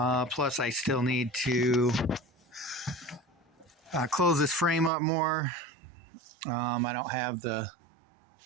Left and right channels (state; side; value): drops out; left; at 4.9 s